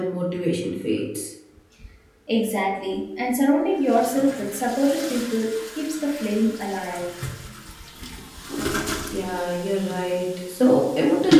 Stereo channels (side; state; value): both; identical; correlation 1.00